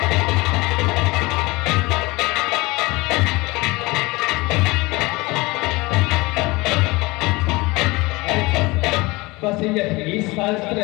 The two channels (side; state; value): right; quieter; 23.0 dB